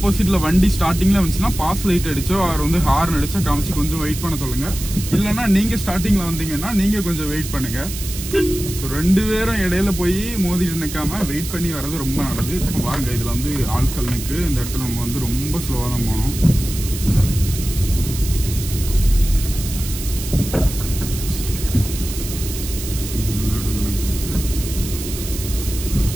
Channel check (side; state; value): right; noise; hiss, 9 dB below the sound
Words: வண்டி ஸ்டார்டிங்கில் வந்துச்சுன்னா பாஸ் லைட் அடிச்சோ அவர் ஹார்ன் அடிச்சோ காமிச்சு கொஞ்சம் வெயிட் பண்ண சொல்லுங்க. இல்லைன்னா நீங்கள் ஸ்டார்டிங்கில் வந்தீங்கன்னா நீங்கள் கொஞ்சம் வெயிட் பண்ணுங்க. ஸோ 2 பேரும் இடையில போய் மோதிட்டு நிற்காம வெயிட் பண்ணி வர்றது ரொம்ப நல்லது. இப்போ வாங்க, இதில் ஆட்கள் நிற்கு. இந்த இடத்துல நம்ம ரொம்ப ஸ்லோவாக தான் போகணும்.